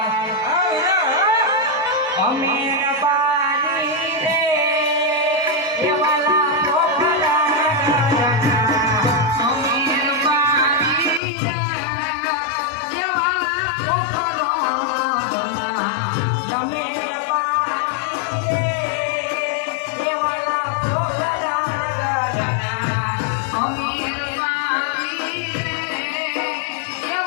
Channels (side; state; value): right; drops out; at 11.2 s